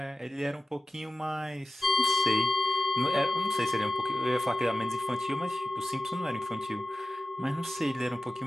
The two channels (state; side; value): normal; both; correlation 0.95